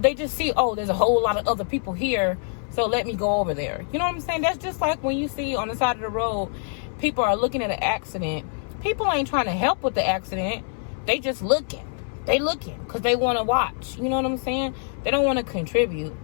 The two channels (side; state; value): right; silent; 62 dB below the other